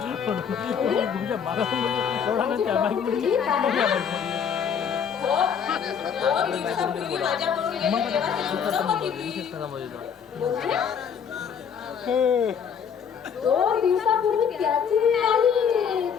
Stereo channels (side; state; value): right; quieter; 7.3 dB